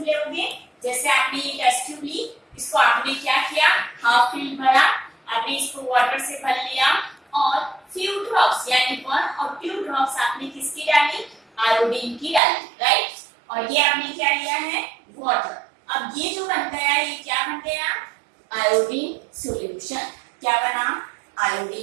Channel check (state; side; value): drops out; left; at 12.4 s